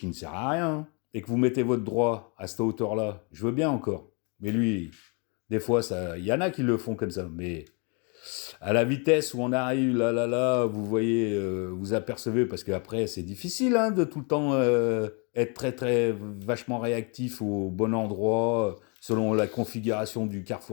ne sert à rien, et que vous mettez votre droit à cette hauteur-là, je veux bien encore. Mais lui, des fois, il y en a qui le font comme ça. Mais à la vitesse où on arrive, là, vous voyez, vous apercevez, parce qu'après, c'est difficile de tout le temps être très, très vachement réactif au bon endroit, selon la configuration du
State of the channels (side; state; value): right; quieter; 34.6 dB